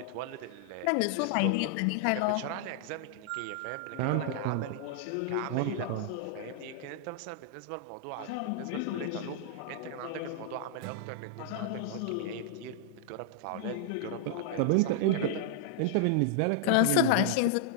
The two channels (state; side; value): different; both; correlation -0.01